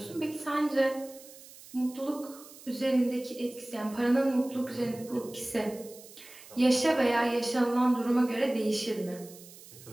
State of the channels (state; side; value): noise; right; hiss, 19 dB below the sound